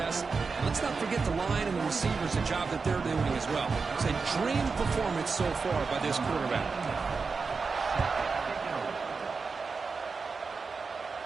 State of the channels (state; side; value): quieter; left; 4.7 dB